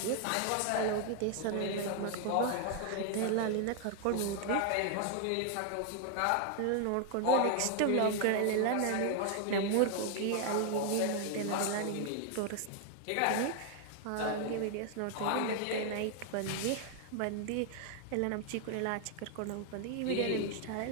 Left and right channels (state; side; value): different; both; correlation 0.00